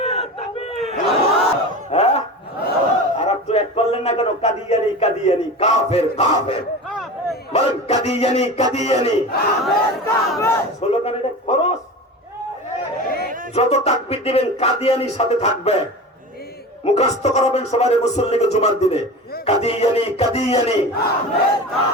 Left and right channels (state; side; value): normal; both; correlation 0.31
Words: আর একটু এক করলেন না কেন? কাদিয়ানি কাদিয়ানি, কাফের কাফের, বলেন কাদিয়ানি কাদিয়ানি। স্লোগান এটা খরচ। যত তাকবীর দিবেন কাদিয়ানির সাথে থাকবে। মুখস্থ করাবেন সবাই মুসল্লিকে জুমার দিনে, কাদিয়ানি কাদিয়ানি